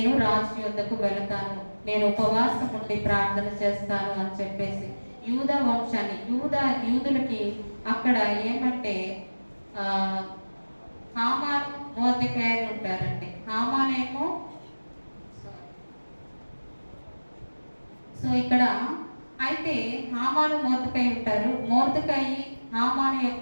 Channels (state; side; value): inverted; both; correlation -1.00